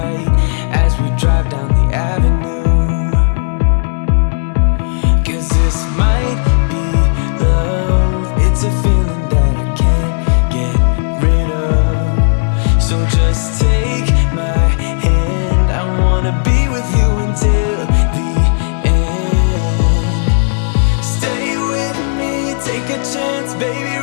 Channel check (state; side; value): silent; right; digital silence